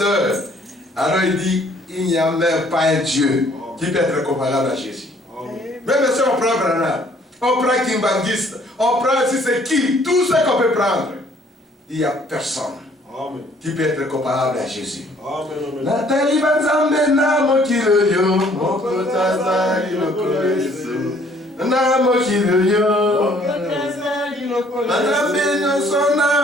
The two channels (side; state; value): both; normal; correlation 0.61